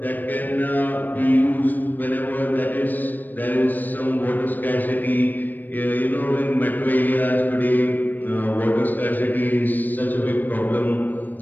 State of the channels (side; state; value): right; late; 0.089 ms